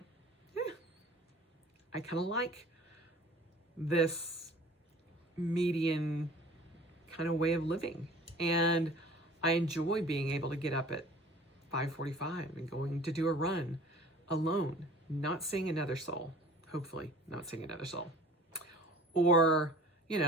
I kind of like this median kind of way of living. And I enjoy being able to get up at 5:45 and going to do a run alone, not seeing another soul, hopefully not seeing another soul. Or,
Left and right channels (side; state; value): both; normal; correlation 0.47